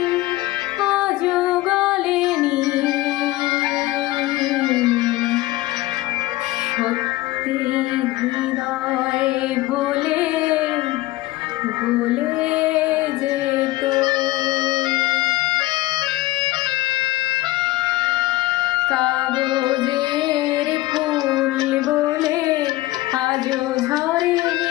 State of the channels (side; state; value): right; quieter; 17.8 dB